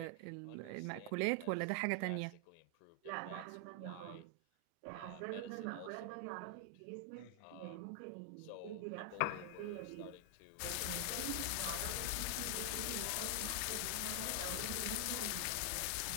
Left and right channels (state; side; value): different; both; correlation 0.00